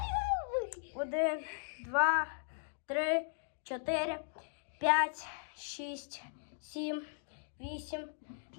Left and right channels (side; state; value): right; silent; digital silence